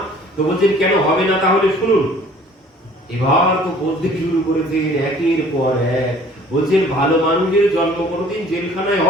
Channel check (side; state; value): both; normal; correlation 0.52